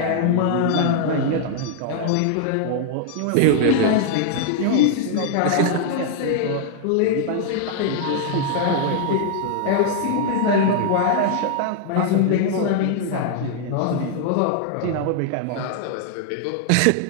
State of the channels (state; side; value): different; both; correlation 0.00